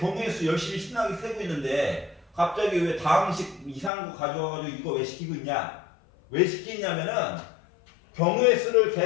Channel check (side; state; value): right; drops out; at 3.9 s